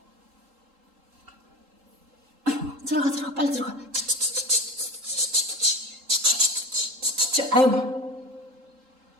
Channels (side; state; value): left; late; 3.8 ms